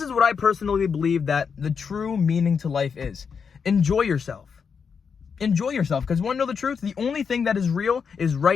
is what I personally believe that the true meaning to life is. Enjoy yourself. Enjoy yourself, because you want to know the truth? The only thing that is real is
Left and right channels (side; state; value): right; quieter; 6.2 dB